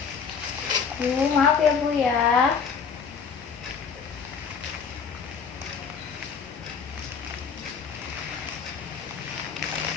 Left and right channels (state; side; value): quieter; right; 6.2 dB